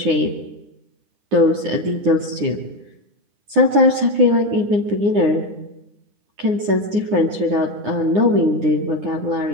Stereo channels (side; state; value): left; late; 9.6 ms